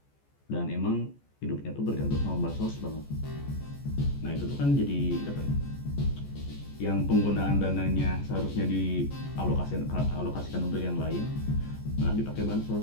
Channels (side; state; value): right; late; 14 ms